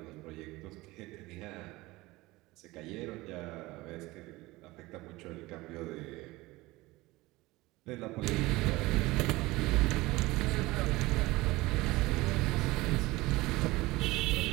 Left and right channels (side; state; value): left; quieter; 20.4 dB